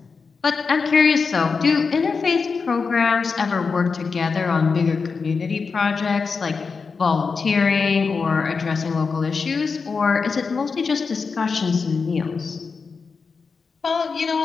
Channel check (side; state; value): right; quieter; 5.0 dB